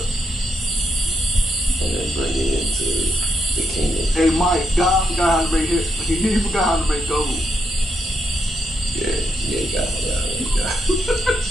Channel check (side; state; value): both; normal; correlation 0.80